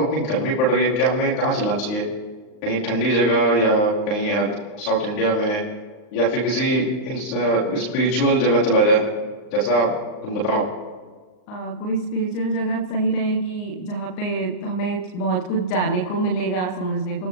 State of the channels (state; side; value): late; right; 38 ms